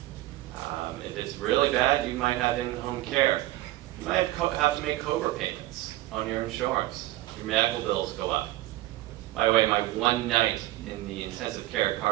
If it's really bad, you might have in-home care. You might have to make COBRA payments on your insurance. Your medical bills go up. By the way, my one night in the intensive care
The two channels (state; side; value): quieter; left; 17.0 dB